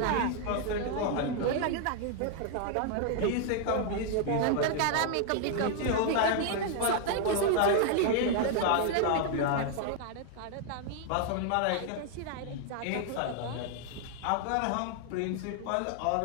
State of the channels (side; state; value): both; different; correlation 0.00